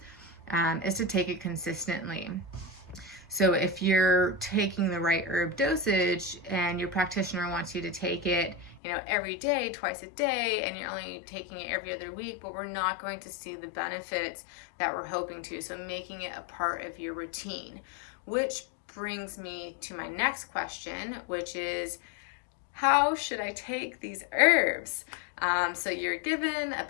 is to take it consistently. So if you're taking the right herb dosage and your practitioner wants you to take it, every day, twice a day, and you're only taking it every other week, but we're not going to see the benefits that we're hoping to. So making it a part of your routine, which brings me to my next question, which is, how should I take these herbs? So you're given a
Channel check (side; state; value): right; drops out; at 8.8 s